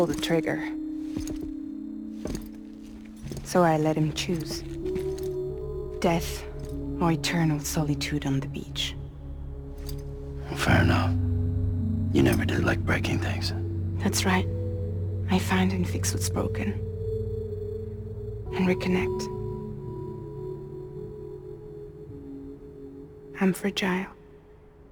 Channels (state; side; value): identical; both; correlation 1.00